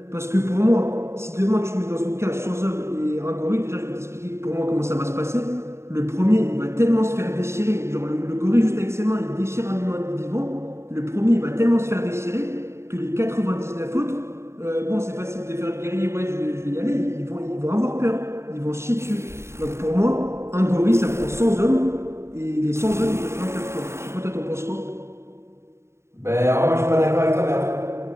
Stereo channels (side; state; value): left; late; 0.13 ms